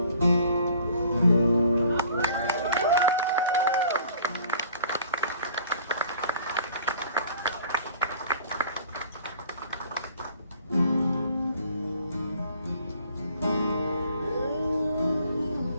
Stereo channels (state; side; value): inverted; both; correlation -0.53